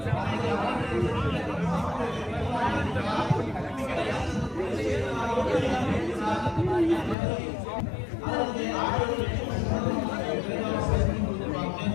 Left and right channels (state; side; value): drops out; right; at 7.2 s